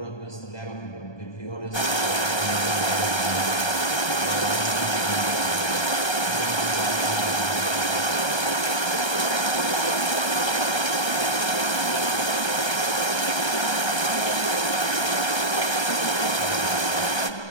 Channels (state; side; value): late; right; 1.3 ms